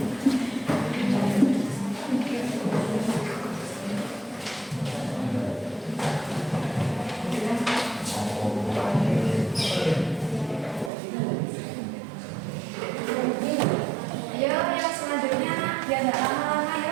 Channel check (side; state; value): left; drops out; at 10.9 s